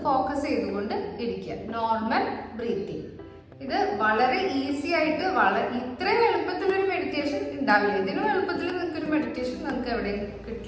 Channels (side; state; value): both; identical; correlation 1.00